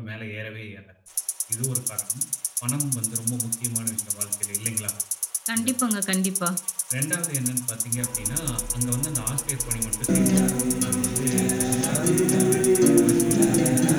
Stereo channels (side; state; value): both; identical; correlation 1.00